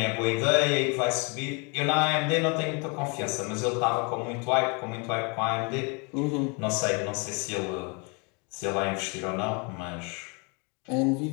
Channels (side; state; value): right; quieter; 32.4 dB